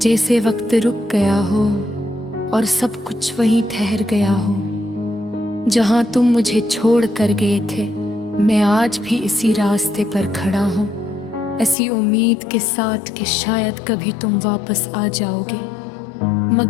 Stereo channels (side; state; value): right; drops out; at 11.8 s